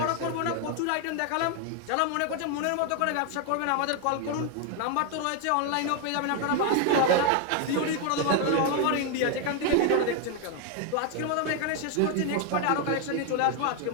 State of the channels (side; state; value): both; different; correlation 0.01